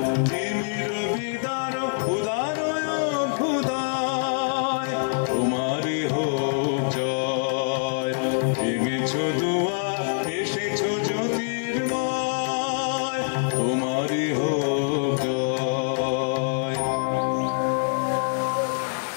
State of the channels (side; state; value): right; silent; digital silence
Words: তিমির বিদার উদারয় অভ্যুদয়, তোমারই হোক জয়। ভেঙেছ